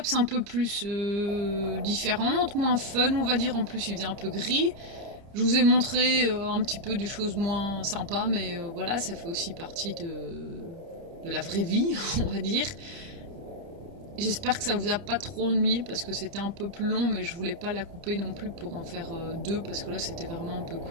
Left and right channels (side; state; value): left; late; 30 ms